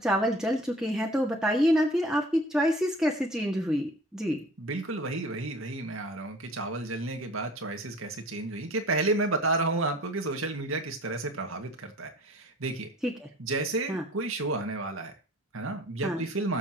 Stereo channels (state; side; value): normal; both; correlation 0.46